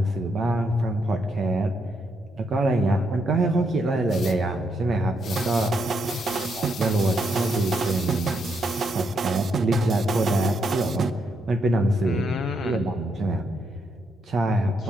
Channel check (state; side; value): normal; both; correlation 0.78